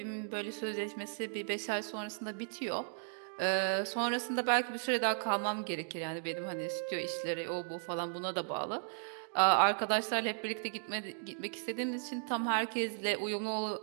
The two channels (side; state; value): left; silent; digital silence